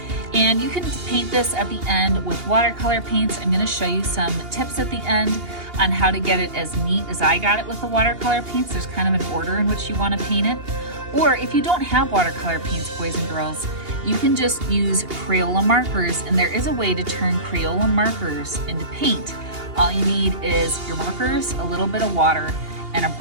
and you can paint this at the end with watercolor paints. I'm going to show you some tips at the end on how to get it as neat as I got it with the watercolor paints. There's kind of an order in which you want to paint it. Or if you don't have watercolor paints, boys and girls, you can just use Crayola markers, and there is a way to turn Crayola markers into paint. All you need is your markers, a little bit of water, and a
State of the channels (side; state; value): left; late; 2.8 ms